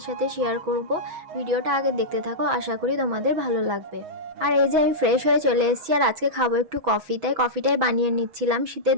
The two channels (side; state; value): left; late; 6.1 ms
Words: সাথে শেয়ার করব। ভিডিওটা আগে দেখতে থাকো, আশা করি তোমাদের ভালো লাগবে। আর এই যে আমি ফ্রেশ হয়ে চলে এসেছি, আর আজকে খাবো একটু কফি, তাই কফিটাই বানিয়ে নিচ্ছিলাম। শীতের